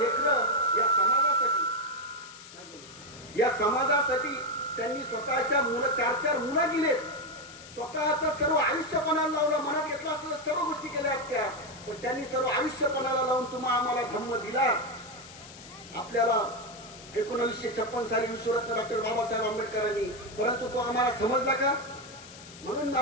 या समाजासाठी त्यांनी स्वतःच्या 4 मुलं दिलेत. स्वतःचं सर्व आयुष्य पणाला लावलं. मनात घेतलं असतं तर सर्व गोष्टी केल्या असत्या, पण त्यांनी सर्व आयुष्य पणाला लावून आम्हाला धम्म दिला. आपल्याला 1956 साली विश्वरत्न डॉक्टर बाबासाहेब आंबेडकरांनी, परंतु तो आम्हाला समजला का? म्हणून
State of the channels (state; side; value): noise; left; hiss, 17 dB below the sound